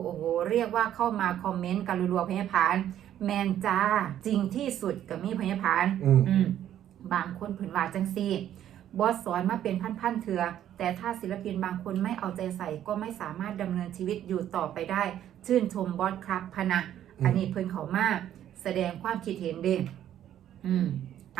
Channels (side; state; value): left; quieter; 11.1 dB